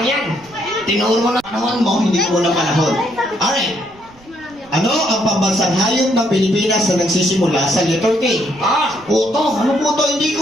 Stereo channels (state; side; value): noise; right; rumble, 26 dB below the sound